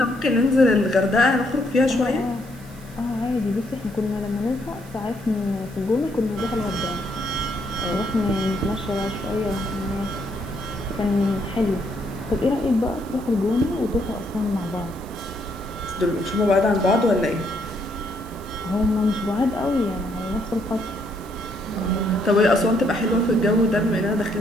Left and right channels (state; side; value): noise; right; hiss, 23 dB below the sound